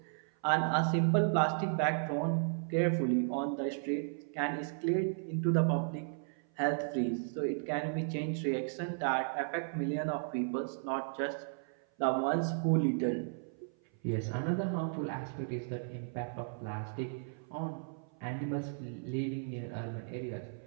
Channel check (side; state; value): left; silent; 55 dB below the other